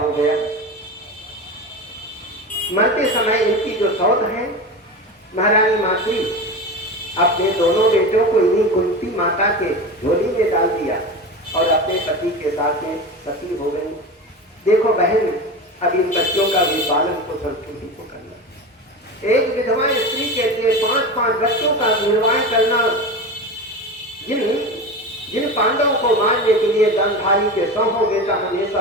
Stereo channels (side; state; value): both; normal; correlation 0.26